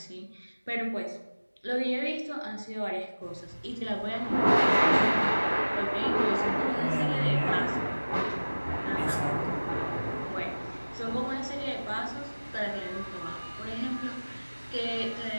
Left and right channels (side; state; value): both; inverted; correlation -1.00